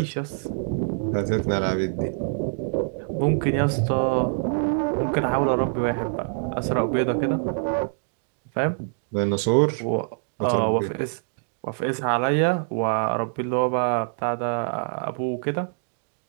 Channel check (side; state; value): left; silent; digital silence